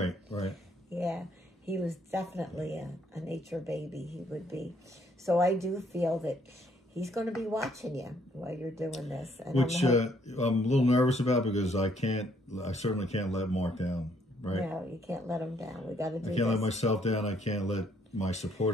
right. Yeah, he was definitely a nature baby, he would be. So I do feel that he's going to be watching you while you're doing this. And which I'm a little nervous about, because I certainly can't let Mark down, right? No, you can't let him down. We got to do this. I can't let myself down. I can't let my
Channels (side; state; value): both; normal; correlation 0.68